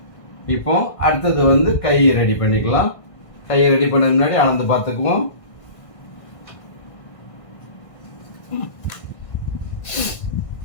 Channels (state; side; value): late; right; 1.5 ms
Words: இப்போ அடுத்தது வந்து கை ரெடி பண்ணிக்கலாம். கையை ரெடி பண்ண முன்னாடி அளந்து பார்த்துக்குவோம்.